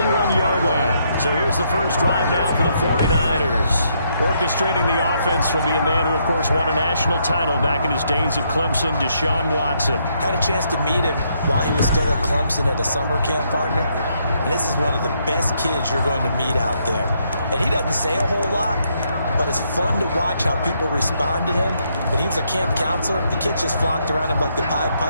line. So here's the first drive now for the 49ers. Orchestrating the offense will be a man who, of course, won a national title back in his days at Clemson, Deshaun Watson. Had a chance to meet him while he was still at Clemson at a summer camp partner. And this is one of the best kids you're going to meet out there. And he doesn't say a whole lot, but it's fun to watch how people respond to him. When he was a camp counselor, the kids just flocked around him like the Pied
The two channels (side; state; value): both; inverted; correlation -0.74